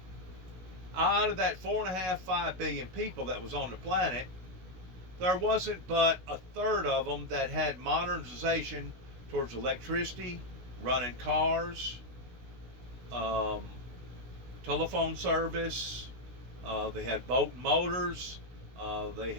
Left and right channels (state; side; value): late; left; 16 ms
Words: Out of that 4.5, 5 billion people that was on the planet, there wasn't but a third of them that had modernization towards electricity, running cars, telephone service. They had boat and motors. They